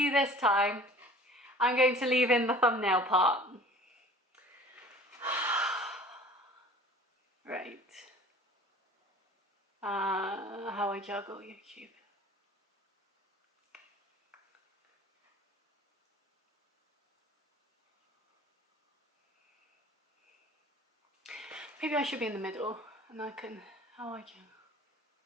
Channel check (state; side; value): normal; both; correlation 0.46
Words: this time, I'm going to leave in the thumbnail part. Right. How I juggle YouTube. Maybe I should be in the middle and I can, how I can,